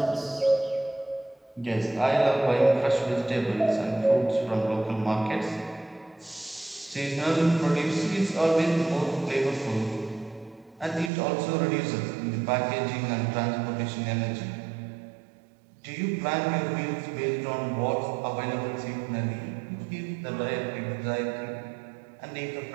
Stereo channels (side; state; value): left; drops out; at 11.1 s